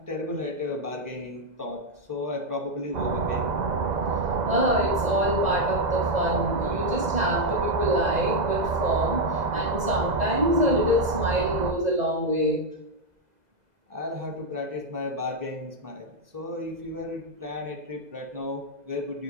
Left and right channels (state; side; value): late; left; 2.0 ms